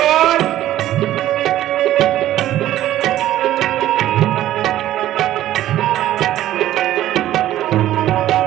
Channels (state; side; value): quieter; left; 13.4 dB